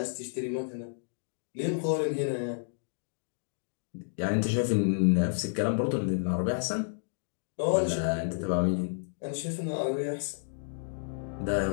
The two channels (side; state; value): right; silent; digital silence